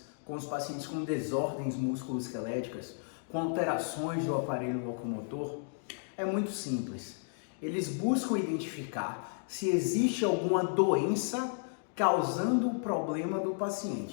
com desordens musculoesqueléticas, com alterações do aparelho locomotor, é muito simples. Eles buscam identificar se existe alguma doença causando o problema do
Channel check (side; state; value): right; silent; digital silence